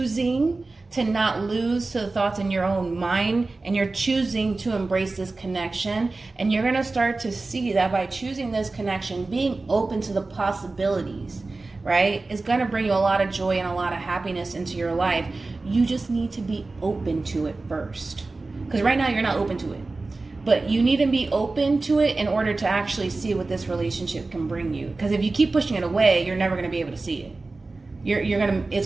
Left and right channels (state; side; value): quieter; left; 3.5 dB